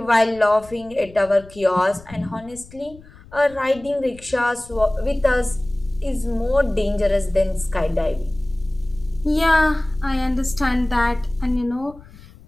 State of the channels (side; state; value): left; noise; rumble, 21 dB below the sound